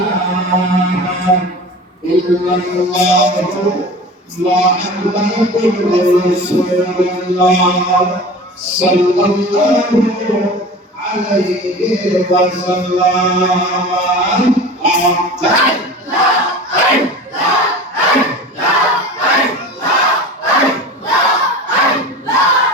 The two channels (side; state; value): both; normal; correlation 0.36